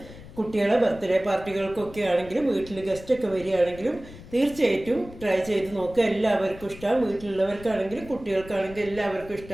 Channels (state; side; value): noise; left; rumble, 17 dB below the sound